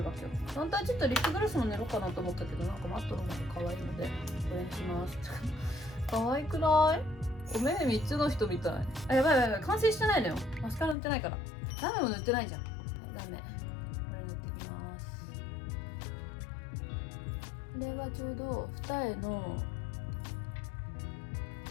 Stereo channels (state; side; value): drops out; right; at 11.0 s